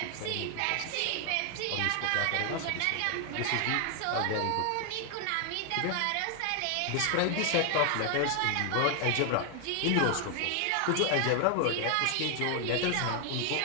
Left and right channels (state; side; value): different; both; correlation 0.00